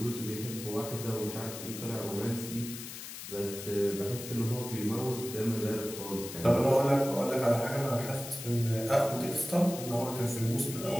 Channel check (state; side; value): noise; left; hiss, 10 dB below the sound